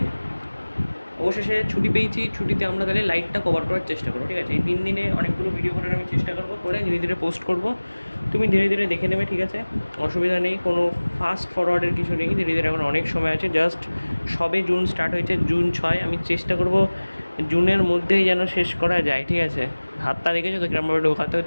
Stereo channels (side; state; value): both; inverted; correlation -1.00